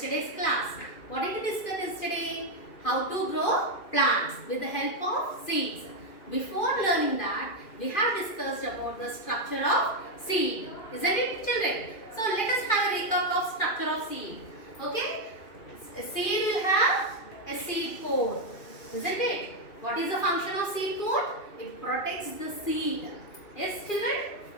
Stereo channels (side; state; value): right; late; 2.4 ms